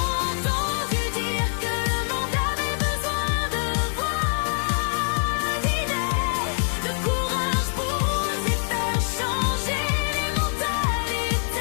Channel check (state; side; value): silent; right; digital silence